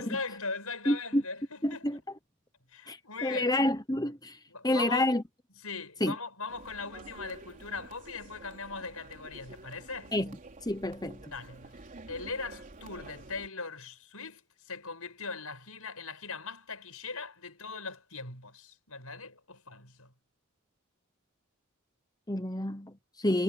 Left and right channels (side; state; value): both; normal; correlation 0.49